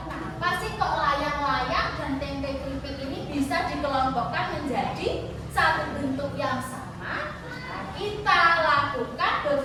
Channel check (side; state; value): both; identical; correlation 1.00